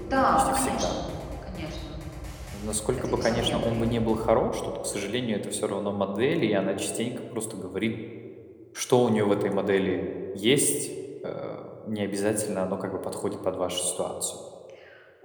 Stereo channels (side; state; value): both; identical; correlation 1.00